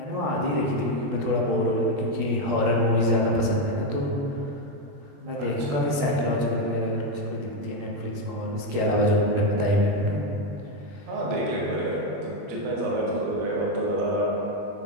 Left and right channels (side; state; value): left; late; 20 ms